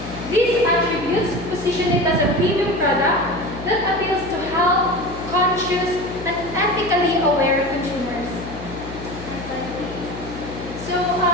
These attributes position it as a premium product that appeals to health-conscious and ethically aware consumers. So,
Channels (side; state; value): left; noise; hum, 12 dB below the sound